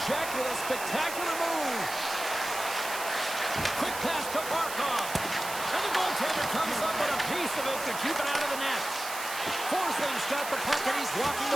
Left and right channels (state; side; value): noise; right; hiss, 8 dB below the sound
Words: check with a spectacular move. Quick pass to Barkov. And the goaltender comes up with a piece of it to keep it out of the net. Forsling's got the puck and he's walking the